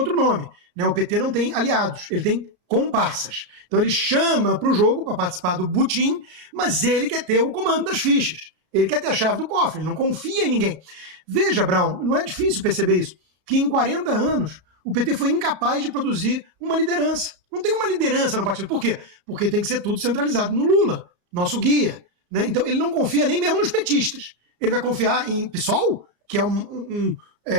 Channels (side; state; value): left; late; 33 ms